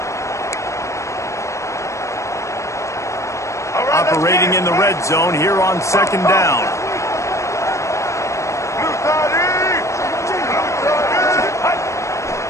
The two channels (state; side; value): late; right; 0.15 ms